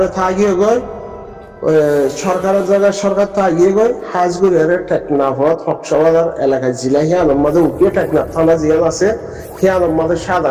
থাকিয়ে গয় সরকারের জায়গায় সরকার তো আগিয়ে গই হাজগুড়ের টেকনাফত হকসবাজার এলাকায় জিলা হিয়ানোর মাঝে উঠিয়ে টেকনাফ থানা জিয়ান আছে হিয়ানোর মাঝে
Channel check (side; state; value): both; identical; correlation 1.00